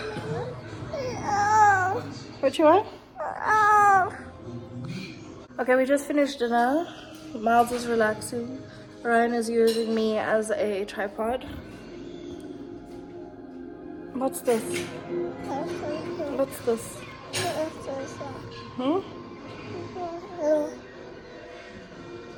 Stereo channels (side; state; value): both; identical; correlation 1.00